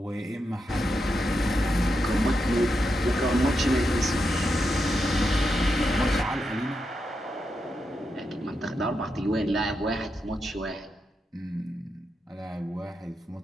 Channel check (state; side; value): normal; both; correlation 0.85